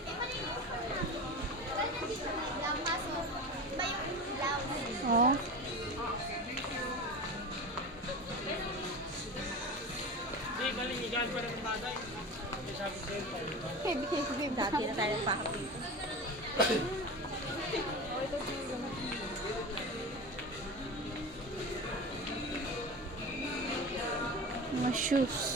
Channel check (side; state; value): both; normal; correlation 0.29